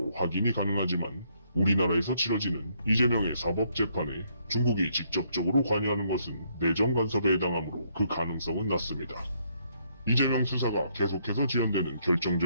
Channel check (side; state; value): both; inverted; correlation -0.71